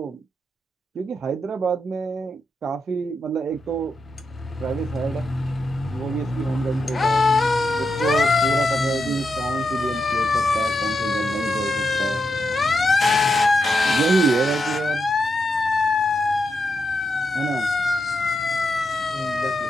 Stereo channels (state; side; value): normal; both; correlation 0.85